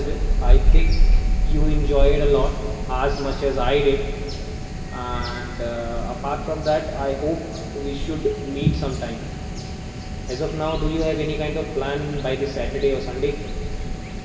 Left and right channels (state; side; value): identical; both; correlation 1.00